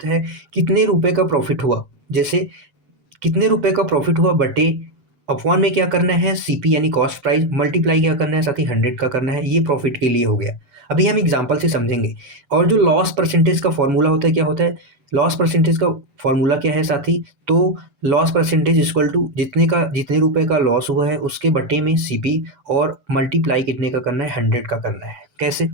है कितने रुपए का प्रॉफिट हुआ। जैसे कितने रुपए का प्रॉफिट हुआ बटे अपॉन में क्या करना है? सीपी यानी कॉस्ट प्राइस, मल्टीप्लाई क्या करना है साथी? 100 का करना है। ये प्रॉफिट के लिए हो गया। अभी हम एग्जांपल से समझेंगे। और जो लॉस परसेंटेज का फॉर्मूला होता है, क्या होता है? लॉस परसेंटेज का फॉर्मूला क्या है साथी? तो लॉस परसेंटेज इक्वल टू जितने रुपए का लॉस हुआ है उसके बटे में सीपी, और मल्टीप्लाई कितने का करना है? 100 का करना है। कैसे?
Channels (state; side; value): late; left; 8.0 ms